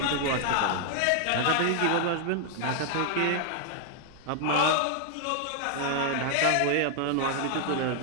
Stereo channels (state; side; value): different; both; correlation 0.00